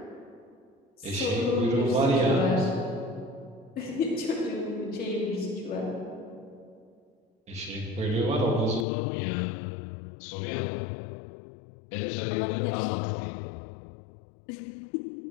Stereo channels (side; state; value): right; drops out; at 8.8 s